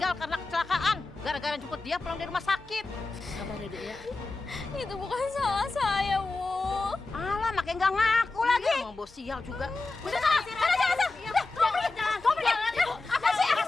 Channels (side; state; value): right; quieter; 3.5 dB